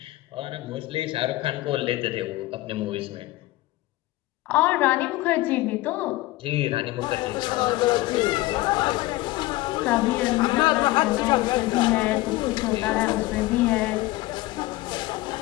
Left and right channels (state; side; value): quieter; right; 18.5 dB